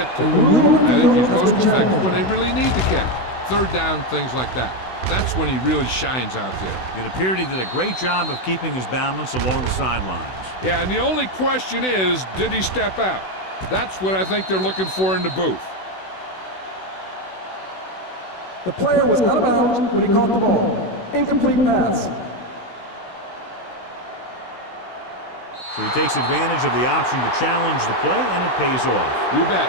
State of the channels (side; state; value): right; late; 16 ms